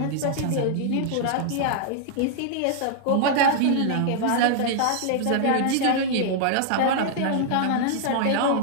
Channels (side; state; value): both; different; correlation -0.01